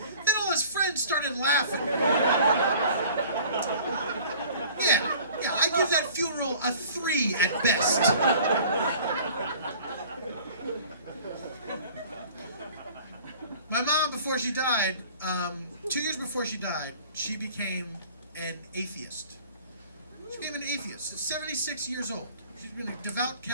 Then all his friends started laughing. Yeah, I give that funeral a 3 at best. My mom, before she died, 2 years before she died, she became an atheist. She became an atheist. 76 years old. She's been a devout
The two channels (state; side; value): inverted; both; correlation -0.48